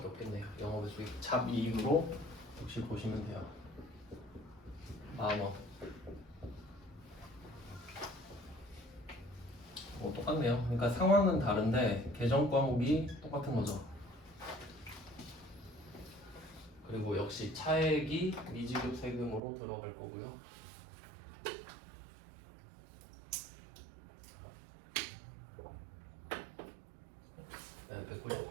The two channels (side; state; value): left; drops out; at 19.4 s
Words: 없겠네요. 영업의 수익 잡이익으로 역시 보시면 돼요. 10,000원. 똑같네요. 그러니까 상황은 다른데 계정 과목이 똑같은 거죠. 그리고 역시 차액이 미지급 세금으로 들어갈 거고요. 네,